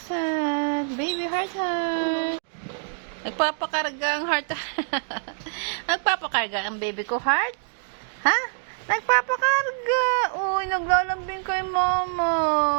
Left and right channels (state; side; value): silent; left; digital silence